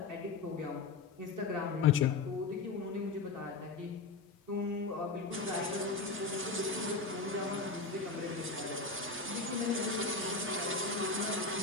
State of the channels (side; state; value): right; quieter; 4.1 dB